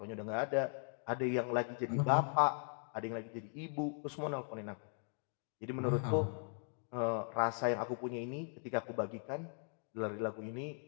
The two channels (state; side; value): silent; right; 52 dB below the other